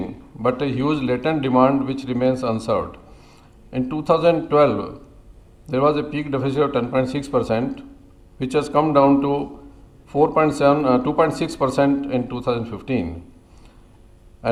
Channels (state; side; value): identical; both; correlation 1.00